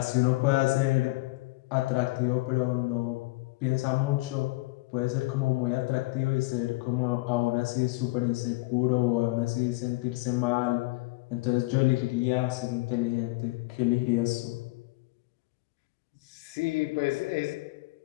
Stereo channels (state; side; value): quieter; right; 22.4 dB